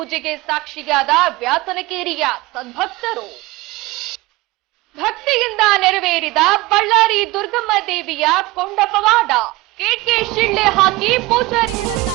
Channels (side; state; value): left; quieter; 20.5 dB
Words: ಸಾಕ್ಷಿಯಾದ ವ್ಯಾಸನಕೇರಿಯ ಸದ್ಭಕ್ತರು. ಭಕ್ತಿಯಿಂದ ನೆರವೇರಿದ ಬಳ್ಳಾರಿ ದುರ್ಗಮ್ಮ ದೇವಿಯ ಕೊಂಡ ಪವಾಡ. ಕೇಟ್ಗೆ ಶಿಳ್ಳೆ ಹಾಕಿ ಪೂಜಾರಿಗಳನ್ನ